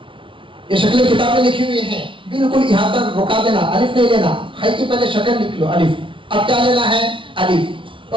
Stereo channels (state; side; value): late; left; 0.25 ms